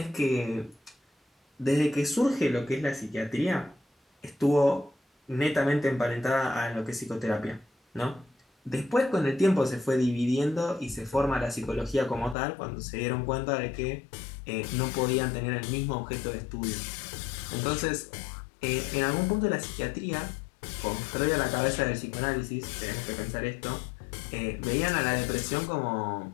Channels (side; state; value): right; drops out; at 12.4 s